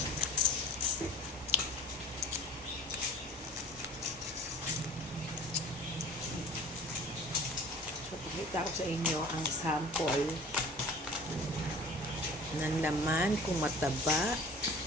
So pakita ko sa inyo ang sample ng laman kung mataba.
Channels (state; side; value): normal; both; correlation 0.45